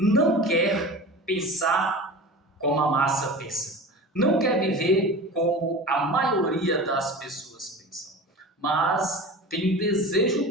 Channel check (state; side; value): normal; both; correlation 0.34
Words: quer pensar como a massa pensa. Não quer viver como a maioria das pessoas pensam. Mas tem um desejo